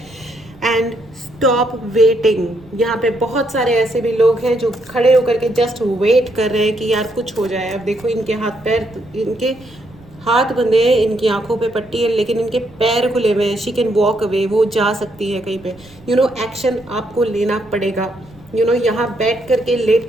And stop waiting. यहाँ पे बहुत सारे ऐसे भी लोग हैं जो खड़े होकर के जस्ट वेट कर रहे हैं कि यार कुछ हो जाए। अब देखो इनके हाथ पैर, इनके हाथ बंधे हैं, इनकी आंखों पे पट्टी है, लेकिन इनके पैर खुले हुए हैं। शी कैन वॉक अवे, वो जा सकती है कहीं पे। यू नो एक्शन आपको लेना पड़ेगा। यू नो यहाँ बैठ करके, लेट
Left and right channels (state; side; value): noise; right; rumble, 24 dB below the sound